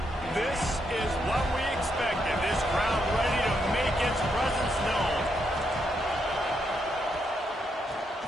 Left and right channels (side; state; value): both; normal; correlation 0.79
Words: This is what we expected. This crowd ready to make its presence known.